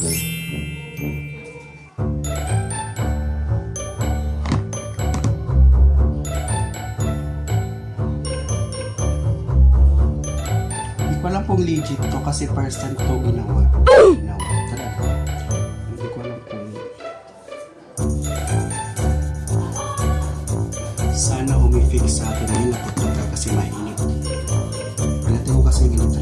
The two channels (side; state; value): both; identical; correlation 1.00